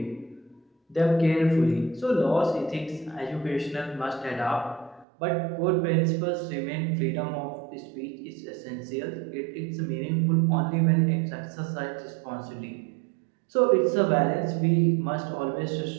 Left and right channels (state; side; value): drops out; left; at 5.1 s